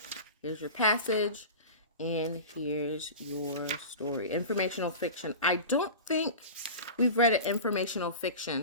Here's your passage. And here's your story. Informational fiction. I don't think we've read an informational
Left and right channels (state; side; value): inverted; both; correlation -0.32